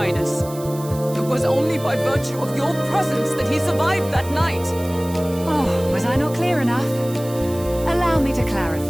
It was only by virtue of your presence that he survived that night. Oh, was I not clear enough? Allow me to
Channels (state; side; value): noise; right; hiss, 17 dB below the sound